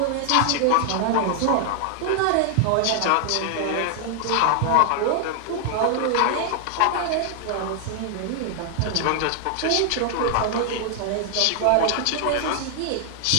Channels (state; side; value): different; both; correlation 0.00